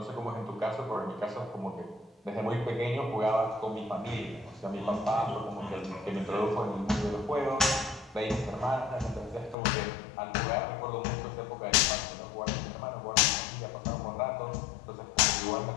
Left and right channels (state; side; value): drops out; right; at 9.6 s